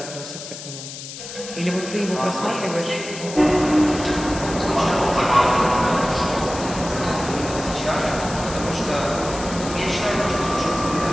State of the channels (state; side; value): noise; left; hiss, 11 dB below the sound